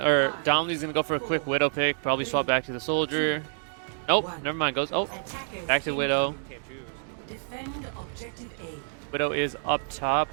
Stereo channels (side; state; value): left; silent; digital silence